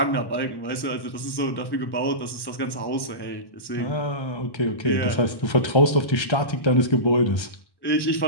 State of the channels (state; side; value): late; right; 1.1 ms